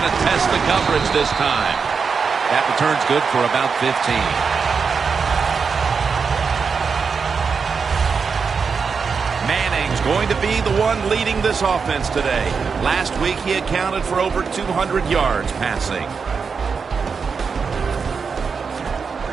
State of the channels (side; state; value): left; quieter; 5.5 dB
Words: to test the coverage this time. That return's good for about 15. Manning's going to be the one leading this offense today. Last week he accounted for over 200 yards passing.